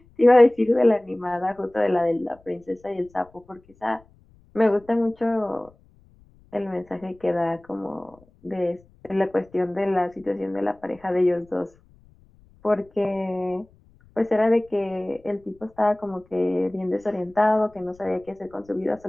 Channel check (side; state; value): left; noise; rumble, 29 dB below the sound